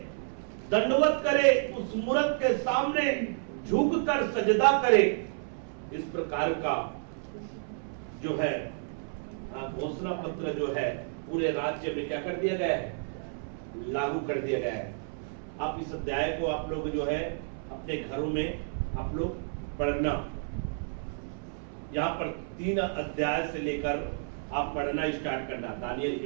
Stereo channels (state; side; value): silent; left; 57 dB below the other